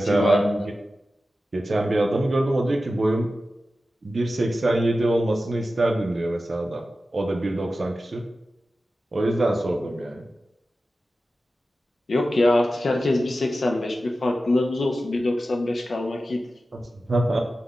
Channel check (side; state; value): both; normal; correlation 0.93